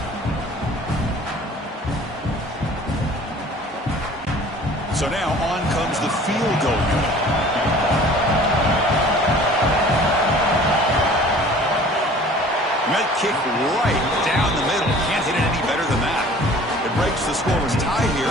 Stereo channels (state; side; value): normal; both; correlation 0.48